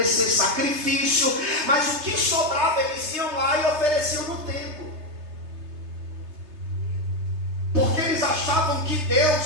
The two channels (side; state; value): left; late; 3.3 ms